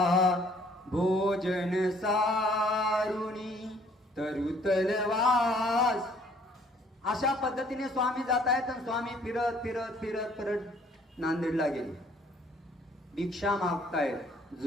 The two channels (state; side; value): normal; both; correlation 0.60